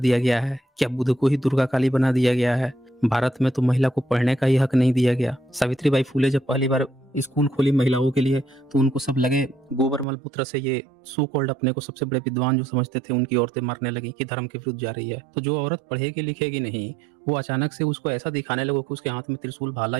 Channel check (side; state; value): left; drops out; at 10.1 s